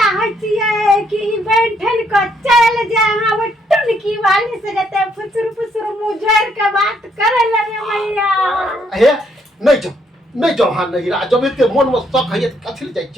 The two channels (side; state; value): both; normal; correlation 0.72